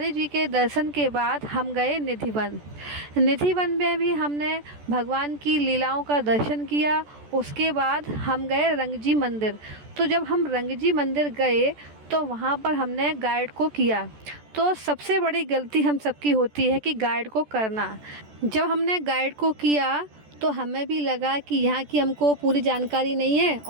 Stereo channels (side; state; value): left; late; 14 ms